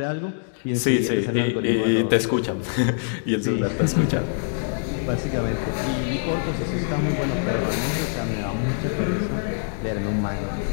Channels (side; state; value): right; silent; digital silence